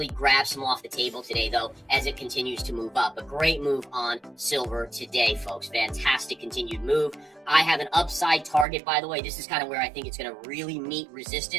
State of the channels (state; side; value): drops out; left; at 8.7 s